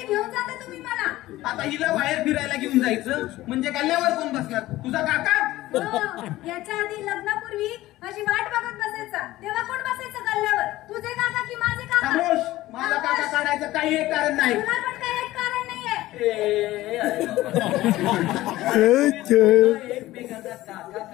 घेऊन जाता तुम्ही मला? आता हिला बाहेर फिरायला घेऊन जायचं म्हणजे गल्ल्यावर कोण बसणार? तुझा काका? याच्या आधी लग्नापूर्वी माझी वाट बघत बसायचा तेव्हा कोण बसायचं गल्ल्यावर? तुझे काका की माझे काका? खामोश. माझा काका काढायचं काही एक कारण नाही. तुला पण काही एक कारण नाहीये. एकमेकांचा काका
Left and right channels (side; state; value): right; quieter; 16.6 dB